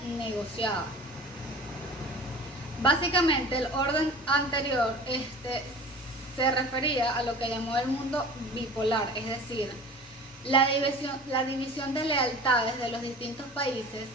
negociada. Básicamente, el orden anterior se refería a lo que llamó el mundo bipolar, es decir, la división de lealtades de los distintos países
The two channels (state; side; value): normal; both; correlation 0.40